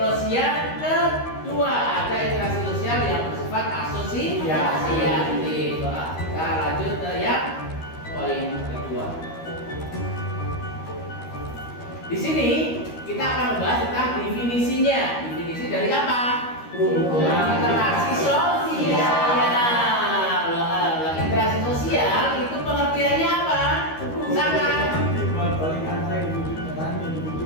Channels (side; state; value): right; late; 13 ms